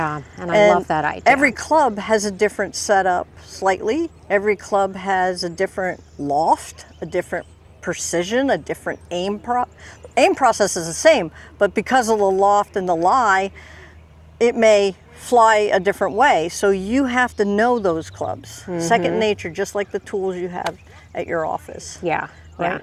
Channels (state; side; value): identical; both; correlation 1.00